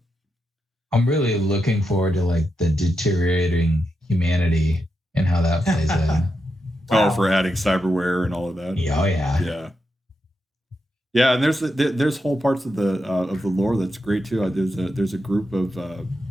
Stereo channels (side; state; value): both; normal; correlation 0.86